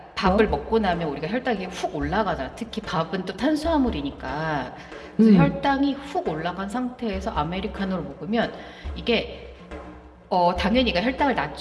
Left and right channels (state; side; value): identical; both; correlation 1.00